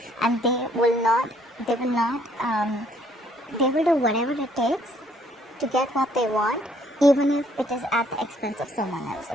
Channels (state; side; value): normal; both; correlation 0.65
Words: And they will do whatever it takes to get what they want, even if it is at the expense of someone else,